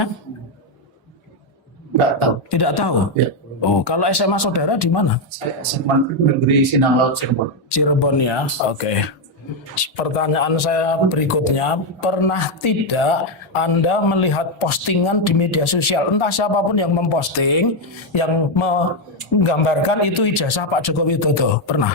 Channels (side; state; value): both; normal; correlation 0.04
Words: Nggak tahu. Tidak tahu. Ya. Oh, kalau SMA saudara di mana? Saya SMA Negeri Sinang Laut Cirebon. Cirebon ya. Oke. Pertanyaan saya berikutnya, pernah tidak Anda melihat postingan di media sosial, entah siapapun yang memposting, yang menggambarkan itu ijazah Pak Joko Widodo?